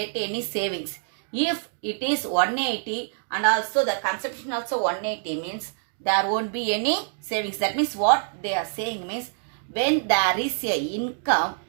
any savings. If it is 180 and also the consumption also 180 means there won't be any savings. That means what they are saying means when there is a income,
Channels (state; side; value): silent; left; digital silence